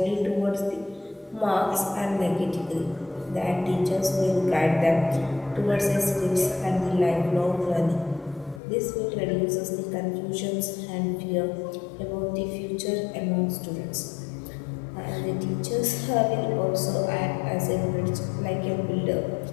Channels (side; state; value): right; drops out; at 8.6 s